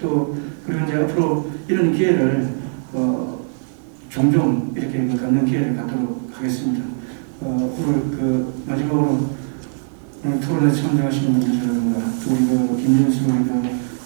그리고 이제 앞으로 이런 기회를 종종 이렇게 갖는 기회를 갖도록 하겠습니다. 오늘 마지막으로 오늘 토론에 참여하시는 분들이라든가 또 우리 김윤수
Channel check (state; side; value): silent; left; 65 dB below the other